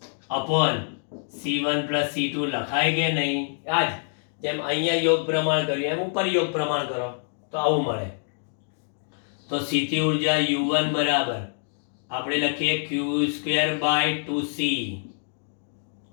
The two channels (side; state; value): right; silent; 61 dB below the other